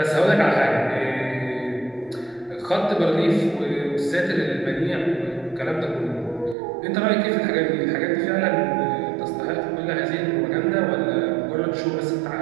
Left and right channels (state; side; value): drops out; left; at 6.6 s